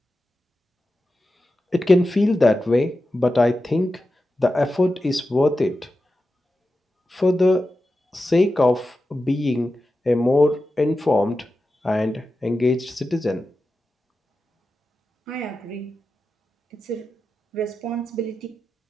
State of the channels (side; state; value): both; normal; correlation 0.92